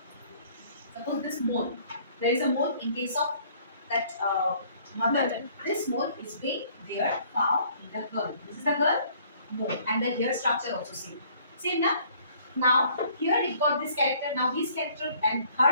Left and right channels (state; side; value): inverted; both; correlation -0.59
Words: Suppose this mole, there is a mole in case of that mother. This mole is being there found in the girl. This is the girl mole, and the hair structure also same now. Now here it got this character. Now his character and